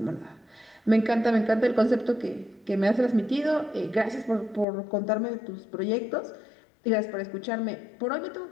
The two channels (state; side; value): drops out; right; at 4.7 s